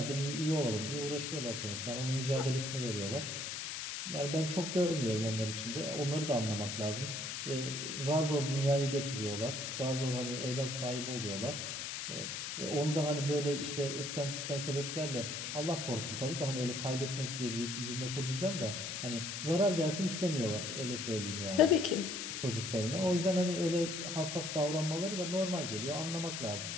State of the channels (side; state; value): left; noise; hiss, 5 dB below the sound